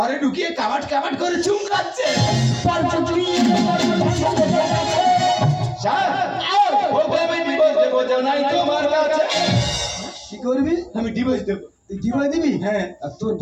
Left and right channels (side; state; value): both; identical; correlation 1.00